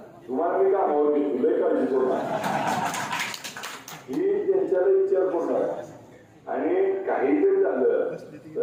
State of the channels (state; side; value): identical; both; correlation 1.00